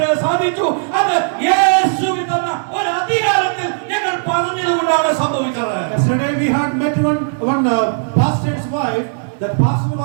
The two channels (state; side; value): silent; left; digital silence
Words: സാധിച്ചു. അത് യേശുവിൽ തന്ന ഒരു അധികാരത്തിൽ ഞങ്ങൾ പറഞ്ഞതുകൊണ്ടാണ് സംഭവിച്ചത്. Yesterday we had met one pastor's wife. That pastor